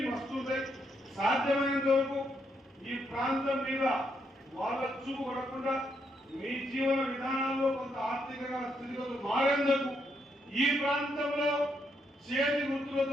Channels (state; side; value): normal; both; correlation 0.77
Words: వస్తుంటాయి. సాధ్యమైనంత వరకు ఈ ప్రాంతం మీద వాళ్ళ చూపు పడకుండా మీ జీవన విధానాల్లో కొంత ఆర్థికంగా స్థితిగతులు మారేందుకు ఈ ప్రాంతంలో చేతి